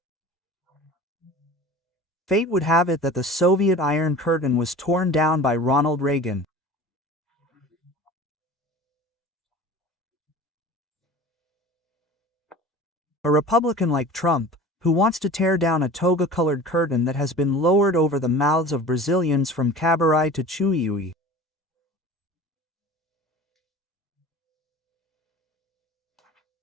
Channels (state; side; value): normal; both; correlation 0.39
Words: Fate would have it that the Soviet Iron Curtain was torn down by Ronald Reagan. A Republican like Trump, who wants to tear down a toga-colored curtain that has been lowered over the mouths of Brazilians from Cabaré to Chuiui.